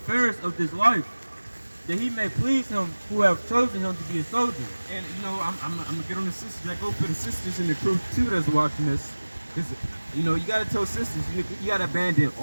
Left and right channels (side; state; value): both; inverted; correlation -1.00